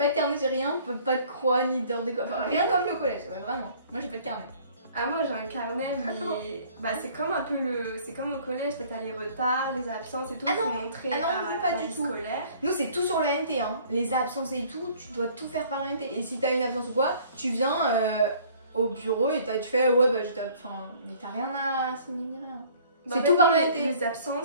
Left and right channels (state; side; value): inverted; both; correlation -0.54